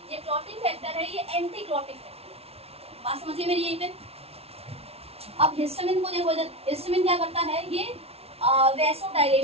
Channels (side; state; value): left; late; 0.30 ms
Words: ये क्लॉटिंग फैक्टर है, ये एंटी क्लॉटिंग फैक्टर। बात समझिए मेरी यहीं पे। अब हिस्टामिन को देखो, हिस्टामिन क्या करता है, ये वेसो